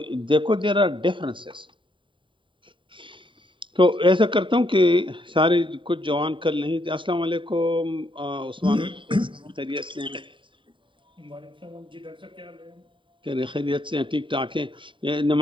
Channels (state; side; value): late; left; 0.24 ms